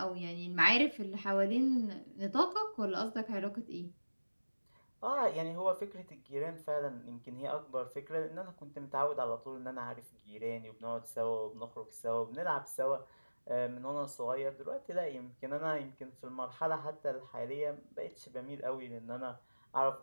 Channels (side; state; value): both; inverted; correlation -1.00